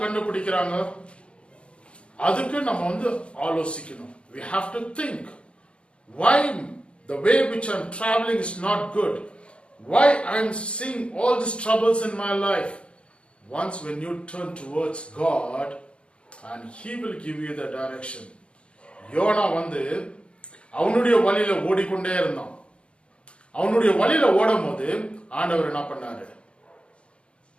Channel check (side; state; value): right; late; 0.058 ms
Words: கண்டுபிடிக்கிறாங்க? அதுக்கு நம்ம ஆலோசிக்கணும். We have to think, why the way which I'm traveling is not good, why I'm seeing all these troubles in my life. Once when you turn towards God, and He will give you the direction. Jonah அவனுடைய வழியில ஓடிக்கொண்டே இருந்தான். அவனுடைய வழியில ஓடும் போது ஆண்டவர் என்ன பண்ணாரு?